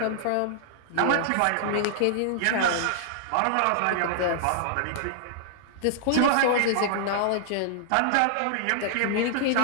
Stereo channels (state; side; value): different; both; correlation -0.01